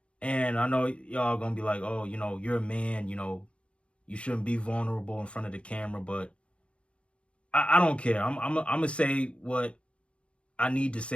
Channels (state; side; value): late; right; 0.059 ms